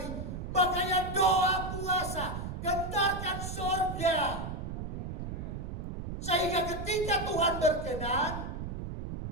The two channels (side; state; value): right; noise; rumble, 6 dB below the sound